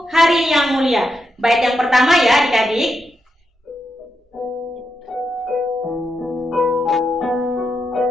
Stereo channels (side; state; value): both; normal; correlation 0.84